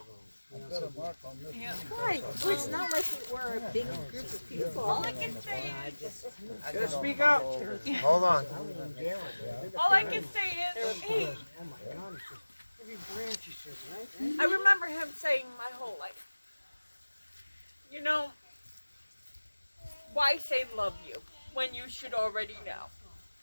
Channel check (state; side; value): inverted; both; correlation -1.00